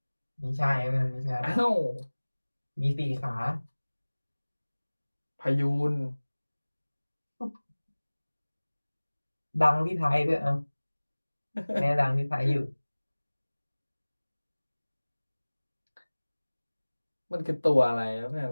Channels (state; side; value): inverted; both; correlation -1.00